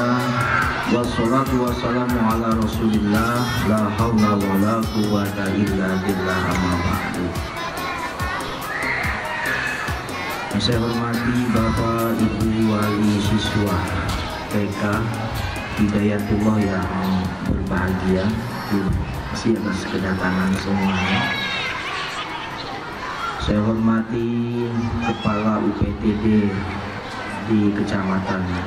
Wassalatu wassalamu ala rasulillah. La hawla wa la quwwata illa billah, amma ba'du. Yang saya hormati Bapak Ibu wali siswa TK Hidayatullah yang berbahagia, terima kasih atas kedatangan semuanya. Saya hormati Kepala UPTD di Kecamatan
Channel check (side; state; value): both; identical; correlation 1.00